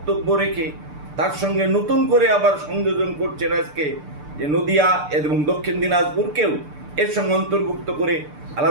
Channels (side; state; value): left; late; 6.8 ms